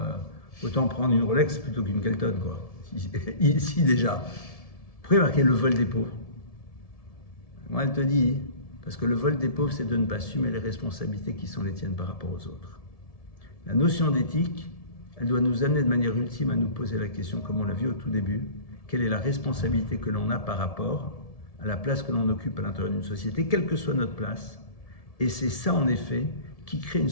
prendre une Rolex plutôt qu'une Kelton, quoi. Ici déjà. Pourquoi marquer le vol des pauvres? Moi elle te dit, parce que le vol des pauvres c'est de ne pas assumer les responsabilités qui sont les tiennes par rapport aux autres. La notion d'éthique, elle doit nous amener de manière ultime à nous poser la question, comme on l'a vu au tout début, quelle est la responsabilité que l'on a par rapport à la place que l'on occupe à l'intérieur d'une société, quelle que soit notre place. Et c'est ça, en effet, qui crée une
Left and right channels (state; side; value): late; right; 1.7 ms